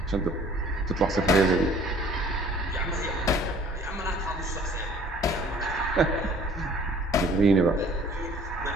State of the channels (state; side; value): normal; both; correlation 0.53